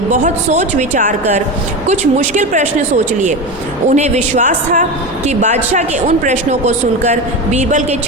सोच विचार कर कुछ मुश्किल प्रश्न सोच लिए। उन्हें विश्वास था कि बादशाह के उन प्रश्नों को सुनकर बीरबल के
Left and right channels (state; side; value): normal; both; correlation 0.22